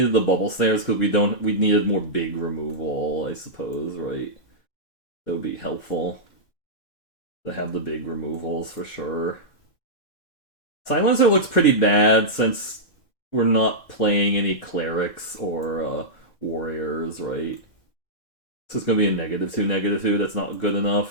the bubble snares, because we needed more big removal, I suppose, right? That would be helpful to have the big removals for sure. Silencer looks pretty bad since we're not playing any clerics or warriors, right? So it's gonna be a -2, -2. That's not good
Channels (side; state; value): right; late; 2.1 ms